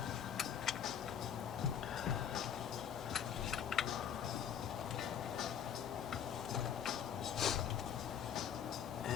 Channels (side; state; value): right; quieter; 8.7 dB